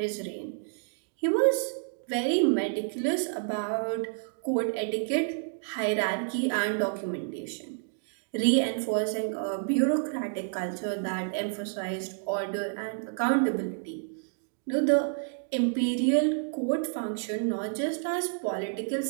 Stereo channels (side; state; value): left; silent; digital silence